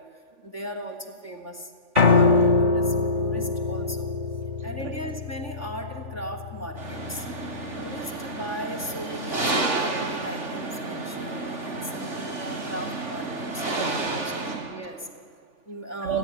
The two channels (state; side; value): late; left; 3.4 ms